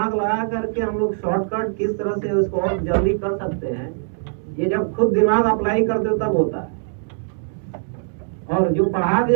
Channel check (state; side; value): silent; left; digital silence